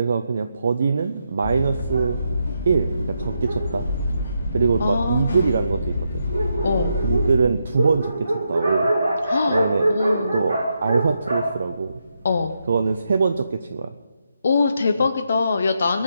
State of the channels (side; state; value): both; inverted; correlation -0.82